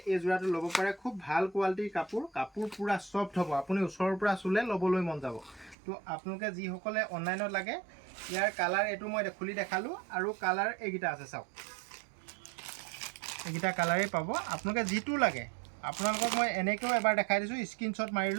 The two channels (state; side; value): drops out; left; at 5.8 s